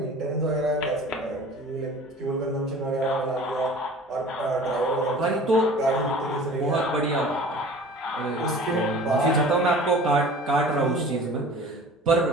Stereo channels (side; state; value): both; normal; correlation 0.43